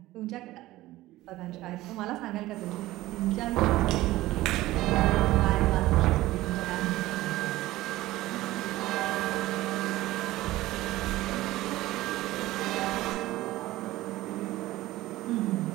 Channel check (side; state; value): left; quieter; 17.0 dB